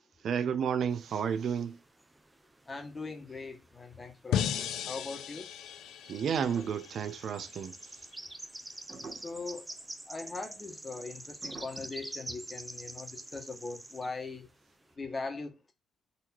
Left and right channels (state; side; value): normal; both; correlation 0.70